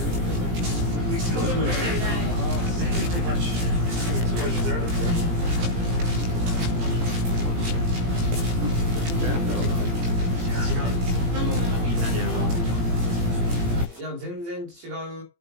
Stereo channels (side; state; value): left; late; 17 ms